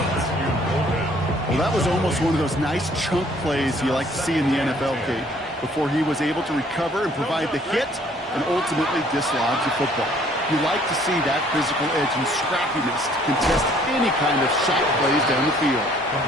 Well, that was almost one of those nice chunk plays you like to see in the NFL, Kate, before he was able to recover and provide the hit and ultimately dislodge the football. You like to see that physical edge and scrappiness to contest any kind of shot plays down the field.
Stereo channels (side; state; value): both; normal; correlation 0.60